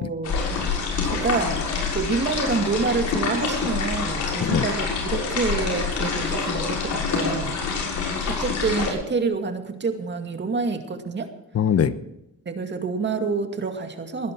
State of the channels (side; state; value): both; normal; correlation 0.24